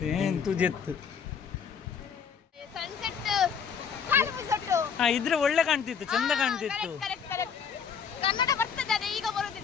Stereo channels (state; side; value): quieter; right; 6.8 dB